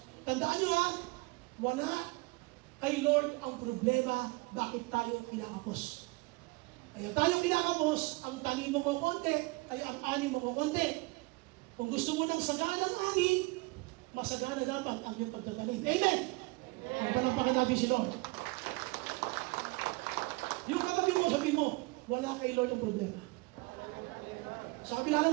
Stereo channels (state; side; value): quieter; left; 25.3 dB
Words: Tandaan nyo ha, wala kay Lord ang problema bakit tayo kinakapos. Kaya tayo kinakapos, ang tanim mo konti, ay ang ani mo konti. Kung gusto mo ng saganang ani, masagana dapat ang iyong pagtatanim. Amen? Palampakan natin si Lord. Yung katabi mo, sabi mo, wala kay Lord ang problema. Sa kabila